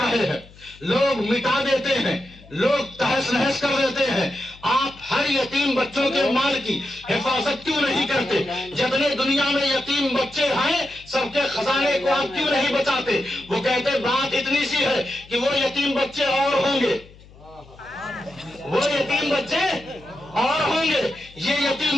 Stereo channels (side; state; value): left; noise; hum, 23 dB below the sound